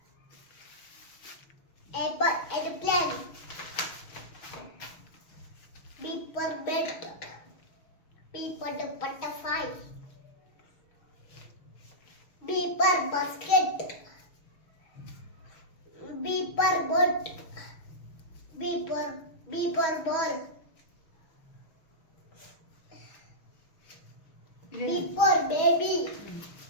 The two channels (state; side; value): late; right; 6.2 ms